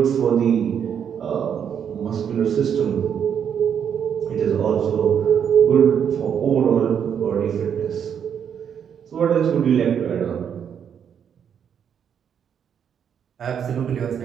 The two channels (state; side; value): quieter; left; 8.1 dB